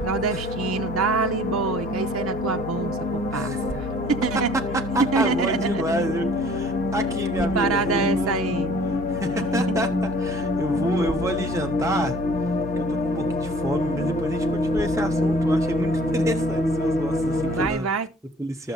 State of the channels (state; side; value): normal; both; correlation 0.52